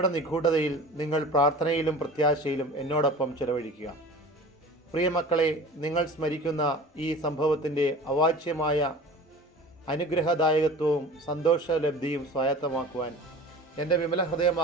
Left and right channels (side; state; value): both; normal; correlation 0.39